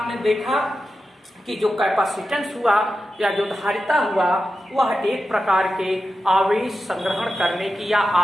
देखा कि जो कैपेसिटेंस हुआ या जो धारिता हुआ वह एक प्रकार के आवेश संग्रहण करने की या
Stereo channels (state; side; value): normal; both; correlation 0.91